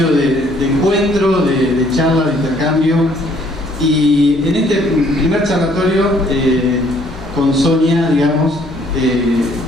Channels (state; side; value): normal; both; correlation 0.63